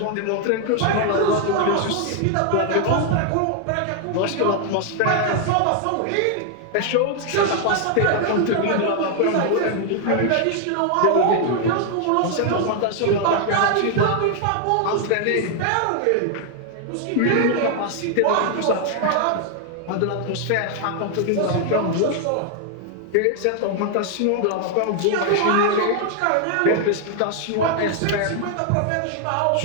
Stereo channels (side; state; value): both; different; correlation 0.00